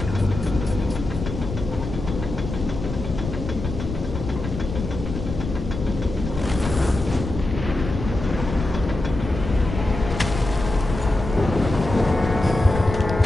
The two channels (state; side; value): noise; left; rumble, 7 dB below the sound